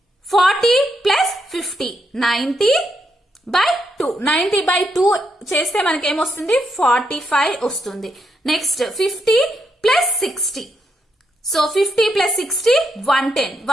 40 ప్లస్ 50 90 బై 2. 90 బై 2 చేస్తే మనకి ఏమొస్తుంది? 45 వస్తుంది. Next 50 plus 60. So 50 plus 60 110.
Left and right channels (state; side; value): normal; both; correlation 0.79